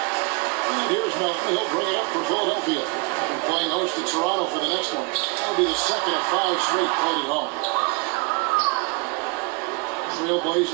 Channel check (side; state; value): left; quieter; 29.9 dB